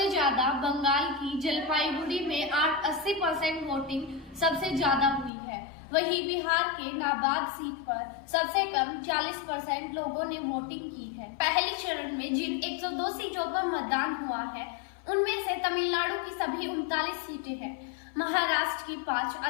ज्यादा बंगाल की जलपाईगुड़ी में 80% वोटिंग सबसे ज्यादा हुई है। वहीं बिहार के नाबाद सीट पर सबसे कम 40% लोगों ने वोटिंग की है। पहले चरण में जिन 102 सीटों पर मतदान हुआ है उनमें से तमिलनाडु की सभी 39 सीटें हैं, महाराष्ट्र की 5,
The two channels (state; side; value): drops out; right; at 5.3 s